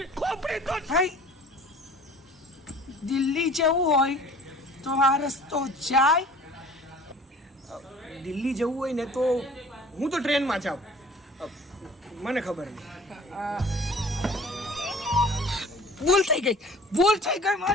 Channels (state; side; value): normal; both; correlation 0.47